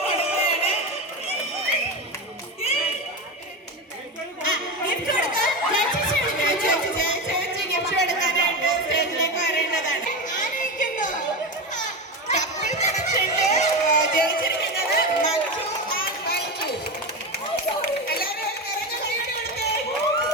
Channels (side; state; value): both; normal; correlation 0.19